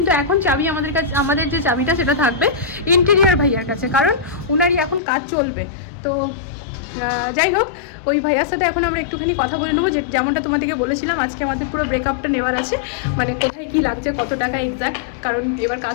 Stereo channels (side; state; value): right; drops out; at 5.0 s